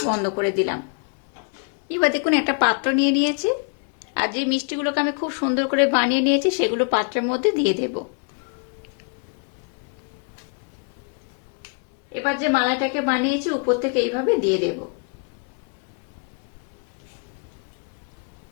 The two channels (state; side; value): quieter; right; 38.6 dB